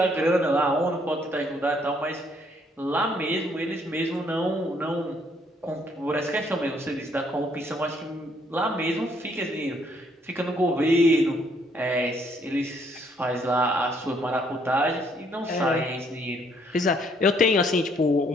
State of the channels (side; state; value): both; normal; correlation 0.68